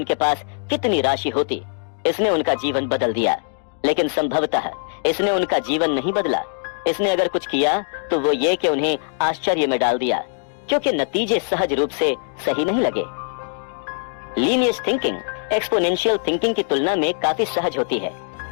पास कितनी राशि होती। इसने उनका जीवन बदल दिया, लेकिन संभवतः इसने उनका जीवन नहीं बदला। इसने अगर कुछ किया तो वो ये कि उन्हें आश्चर्य में डाल दिया, क्योंकि नतीजे सहज रूप से सही नहीं लगे। लीनियर थिंकिंग एक्सपोनेंशियल थिंकिंग की तुलना में काफी सहज होती है।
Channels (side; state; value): right; silent; 64 dB below the other